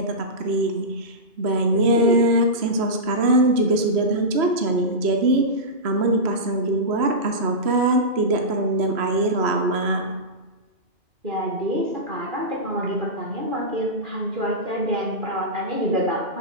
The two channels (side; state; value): left; late; 3.0 ms